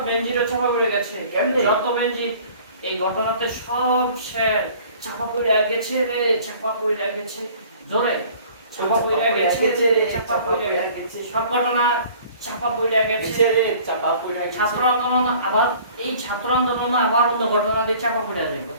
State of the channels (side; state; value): both; inverted; correlation -0.50